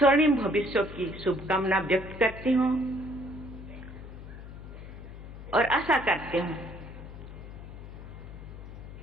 भविष्य की शुभकामना व्यक्त करती हूँ और आशा करती हूँ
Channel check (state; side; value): noise; left; hum, 13 dB below the sound